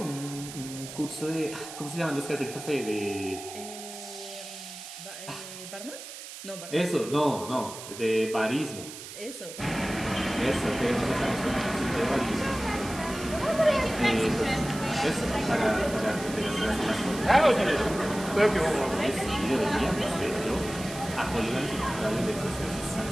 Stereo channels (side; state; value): right; noise; hiss, 12 dB below the sound